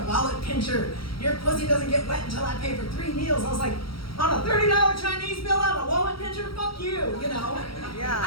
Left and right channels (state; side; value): late; right; 0.75 ms